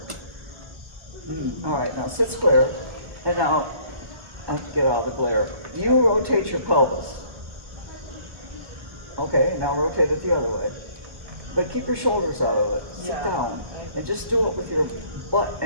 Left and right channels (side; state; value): left; late; 1.2 ms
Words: All right, now sit square. And now, I have to get out of the glare. You rotate your pelvis. Okay, now rotate it the other way. But keep your shoulders out of it. Sit Yeah. down. And just do it with your butt